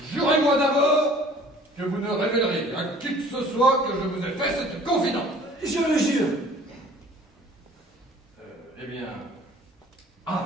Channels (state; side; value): normal; both; correlation 0.51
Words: Jurez-moi d'abord que vous ne révélerez à qui que ce soit que je vous ai fait cette confidence. Je le jure. Eh bien...